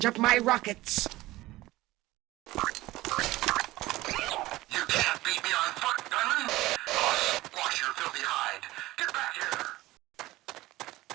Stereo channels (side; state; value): left; quieter; 18.0 dB